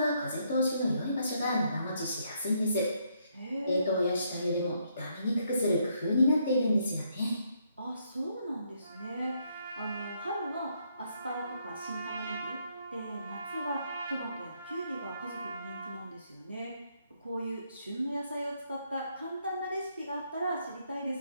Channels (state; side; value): inverted; both; correlation -0.74